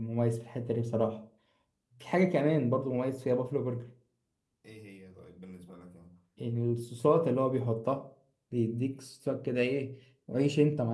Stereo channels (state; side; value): identical; both; correlation 1.00